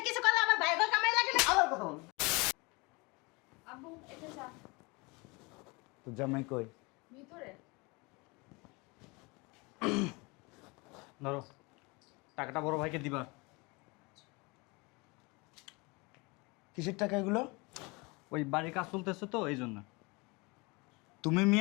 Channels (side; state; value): right; quieter; 26.9 dB